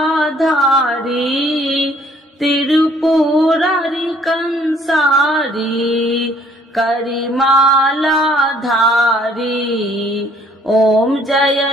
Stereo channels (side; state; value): both; normal; correlation 0.61